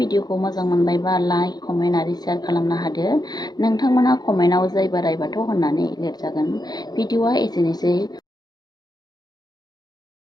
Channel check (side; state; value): right; late; 0.19 ms